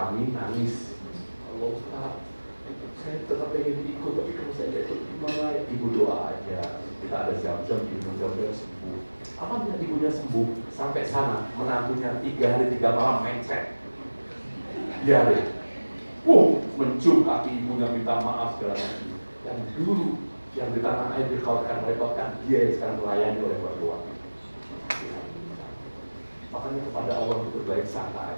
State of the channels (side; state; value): both; inverted; correlation -1.00